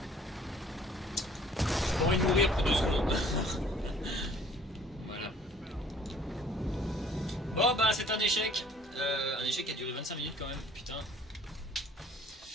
J'ai pas envie de mourir pour 2 secondes. Voilà. Bon bah c'est un échec. Un échec qui a duré 25 minutes quand même, putain.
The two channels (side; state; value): both; normal; correlation 0.55